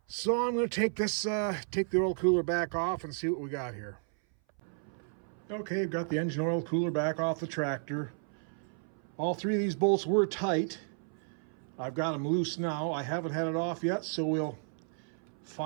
So I'm going to take the oil cooler back off and see what we got here. Okay, I've got the engine oil cooler back off the tractor. All three of these bolts were tight. I've got them loose now. I haven't had it off yet, so we'll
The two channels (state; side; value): silent; left; 56 dB below the other